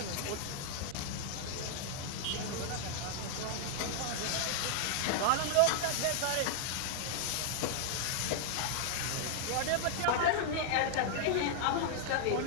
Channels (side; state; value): both; different; correlation -0.01